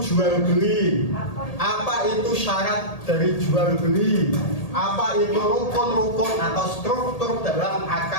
jual beli? Apa itu syarat dari jual beli? Apa itu rukun-rukun atau struktur dalam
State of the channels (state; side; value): late; right; 1.8 ms